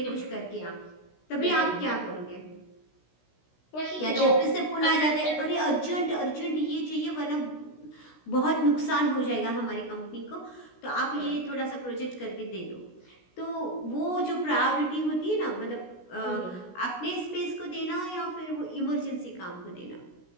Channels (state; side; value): late; right; 16 ms